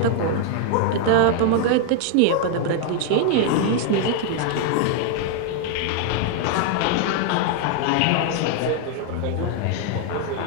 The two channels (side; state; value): both; different; correlation 0.00